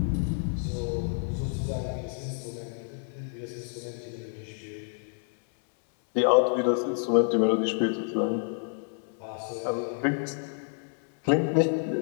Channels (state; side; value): silent; right; 58 dB below the other